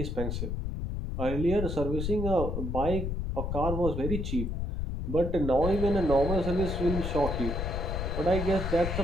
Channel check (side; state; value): left; noise; rumble, 2 dB below the sound